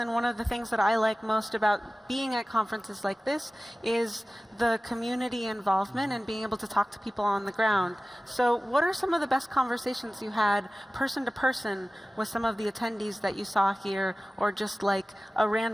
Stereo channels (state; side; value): normal; both; correlation 0.97